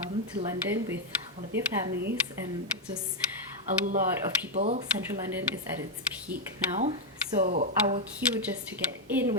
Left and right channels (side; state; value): both; normal; correlation 0.00